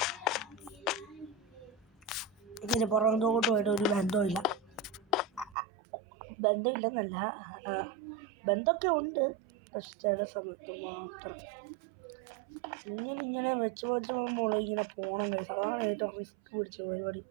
ഇതിന് പുറത്തോട്ടുമായിട്ട് ഒരു ബന്ധമില്ല. ബന്ധമില്ലെന്നല്ല, ബന്ധമൊക്കെ ഉണ്ട്. പക്ഷെ ചില സമയത്ത് മാത്രം ഇങ്ങനെ വെച്ച് പോകുമ്പോൾ ഇങ്ങനെ പോകണം ഗൈസ്. അതാണ് ഏറ്റവും റിസ്ക് പിടിച്ച പരിപാടി.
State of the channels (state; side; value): drops out; left; at 5.6 s